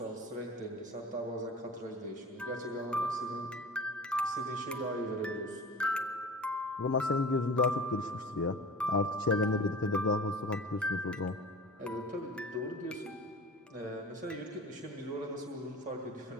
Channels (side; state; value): both; normal; correlation 0.38